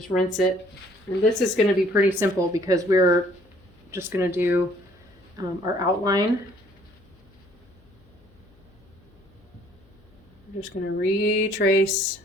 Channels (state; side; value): noise; left; hum, 29 dB below the sound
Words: rinse it. And this is going to be pretty simple because we're just going to do our outline. We're just going to retrace